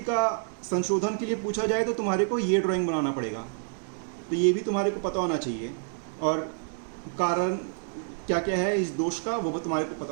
का संशोधन के लिए पूछा जाए तो तुम्हारे को ये ड्राइंग बनाना पड़ेगा। तो ये भी तुम्हारे को पता होना चाहिए, और कारण क्या क्या है इस दोष का वो भी तुम्हारे को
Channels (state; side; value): silent; left; 59 dB below the other